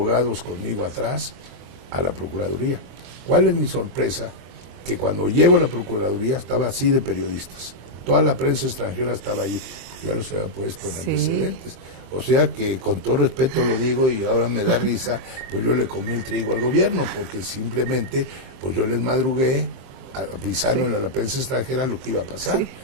conmigo atrás, a la Procuraduría. ¿Cuál es mi sorpresa? Que cuando llego a la Procuraduría estaba así de periodistas. Toda la prensa extranjera estaba allí, porque ya los había puesto en antecedentes. O sea que con todo respeto lo digo y ahora me da risa, pues yo le comí el trigo al gobierno, porque simplemente pues yo les madrugué avisándole a la prensa extranjera lo que iba a pasar. Sí.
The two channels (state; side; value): late; left; 23 ms